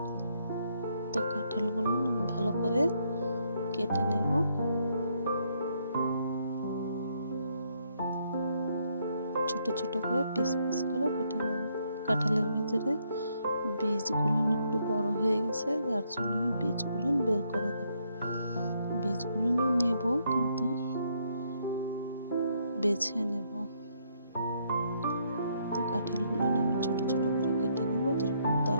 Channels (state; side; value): inverted; both; correlation -0.73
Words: তো কাঁঠালগুলো আমি ভালো করে কেটে নেব। ছোট ছোট করে পিস পিস করে কেটে নেব। কাঁঠালের ভিতরে বীজগুলো একটু বড় হয়ে গেছে, যার জন্য আমি বীজগুলো বের করে দেব। বীজগুলো নেব কিন্তু বেছে নেব। তো কাঁঠালগুলো আমি ছোট ছোট করে কেটে নেব, যেরকম